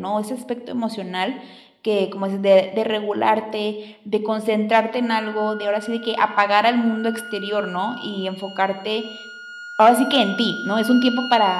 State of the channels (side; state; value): both; identical; correlation 1.00